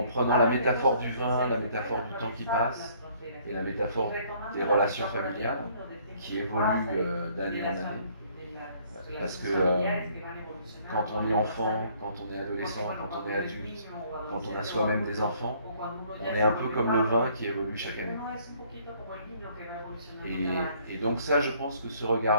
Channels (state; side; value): inverted; both; correlation -0.61